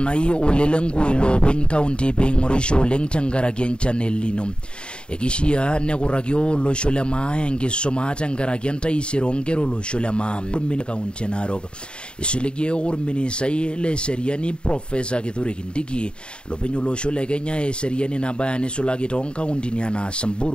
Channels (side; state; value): right; late; 0.052 ms